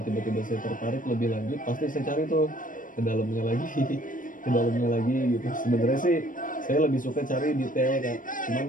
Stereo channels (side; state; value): right; late; 0.39 ms